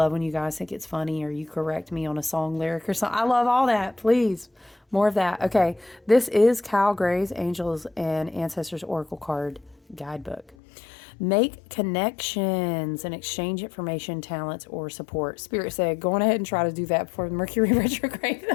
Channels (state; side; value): drops out; right; at 10.6 s